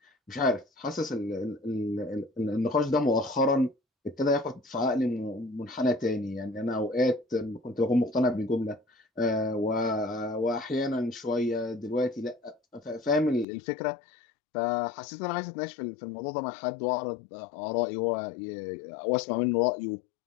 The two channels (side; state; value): right; drops out; at 13.5 s